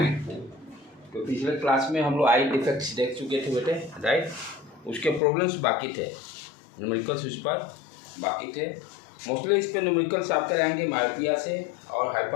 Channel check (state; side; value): drops out; right; at 5.2 s